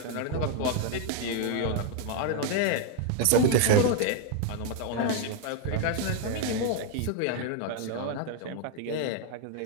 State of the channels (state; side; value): different; both; correlation 0.00